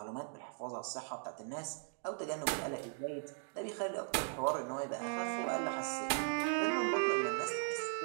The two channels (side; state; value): left; silent; 52 dB below the other